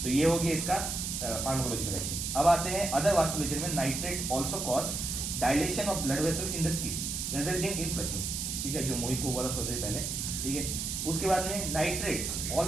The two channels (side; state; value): right; noise; hiss, 3 dB below the sound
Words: तो ये हो गया इसका फार्माकोलॉजिकल एक्शन। अब आते हैं अदर वास्कुलेचर में। Nitrates also cause dilation of blood vessels in the skin resulting in flushing, ठीक है, जो मोहित को हुआ था थोड़ी देर पहले, ठीक है। उसके बाद में nitrates